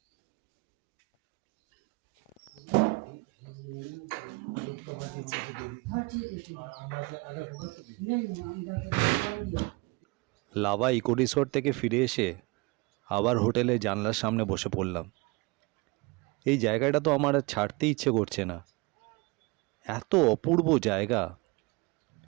লাভা ইকো রিসোর্ট থেকে ফিরে এসে আবার হোটেলে জানলার সামনে বসে পড়লাম। এই জায়গাটা তো আমার আর ছাড়তে ইচ্ছে করছে না, এত অপূর্ব জায়গা।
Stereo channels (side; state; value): left; quieter; 26.1 dB